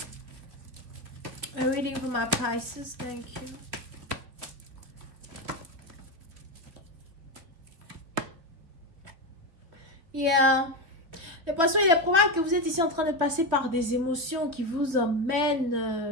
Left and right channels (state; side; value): late; left; 3.3 ms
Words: a reading for my Pisces. Thank you. Yeah. Les poissons, il est probable que vous êtes ici en train de passer par des émotions qui vous